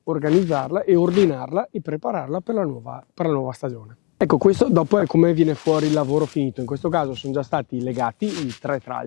organizzarla e ordinarla e prepararla per la nuova stagione. Ecco, questo dopo è come viene fuori il lavoro finito. In questo caso sono già stati legati i 3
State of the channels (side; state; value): right; quieter; 30.0 dB